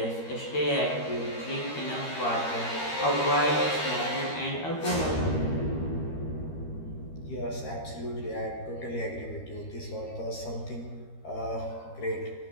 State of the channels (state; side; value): late; right; 13 ms